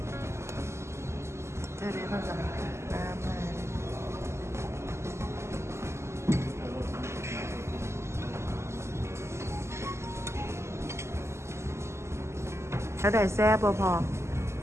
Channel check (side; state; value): left; late; 0.13 ms